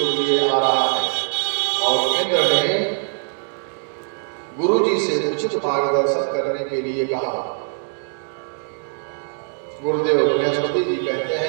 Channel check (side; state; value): left; silent; 64 dB below the other